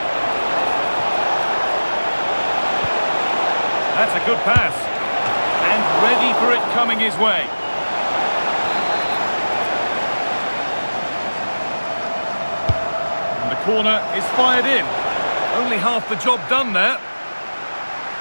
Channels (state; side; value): inverted; both; correlation -1.00